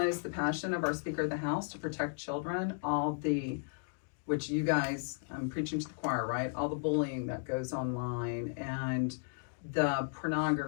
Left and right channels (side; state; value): right; silent; digital silence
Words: the passion of our Speaker of the House to protect children, which you guys, I'm preaching to the choir, right? All the bullying that goes online and the